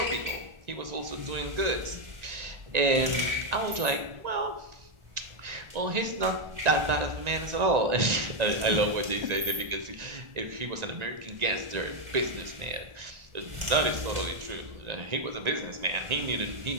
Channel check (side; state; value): left; late; 1.9 ms